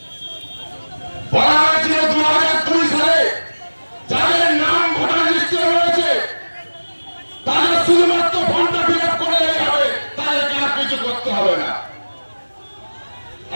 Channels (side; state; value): both; inverted; correlation -1.00